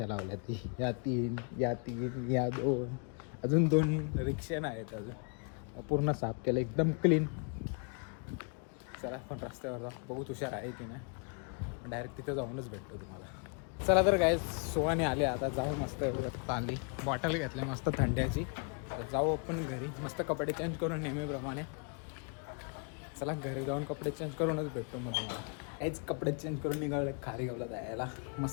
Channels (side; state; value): right; quieter; 39.0 dB